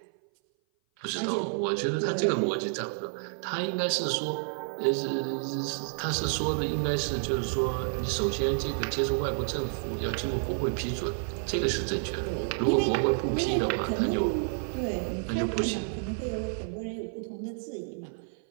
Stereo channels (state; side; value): silent; left; 56 dB below the other